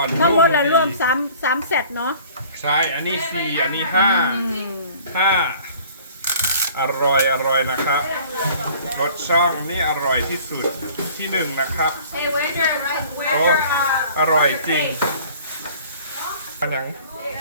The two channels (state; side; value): inverted; both; correlation -0.50